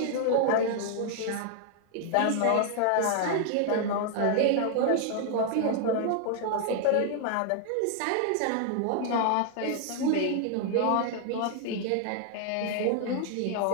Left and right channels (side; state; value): both; different; correlation 0.00